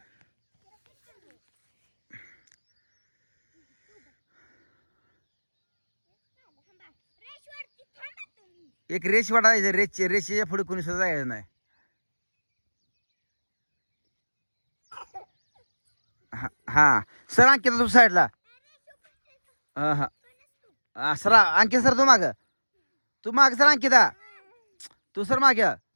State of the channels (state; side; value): inverted; both; correlation -1.00